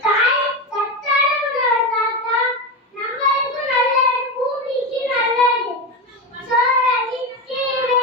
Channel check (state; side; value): normal; both; correlation 0.16